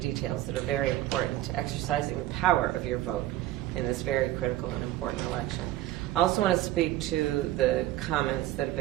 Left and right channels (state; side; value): quieter; left; 15.0 dB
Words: details that are very important to exercising the power of your vote in this very critical and important election. I also want to speak to the comments that have